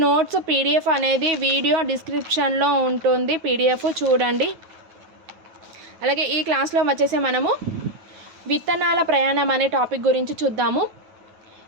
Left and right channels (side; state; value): left; late; 9.3 ms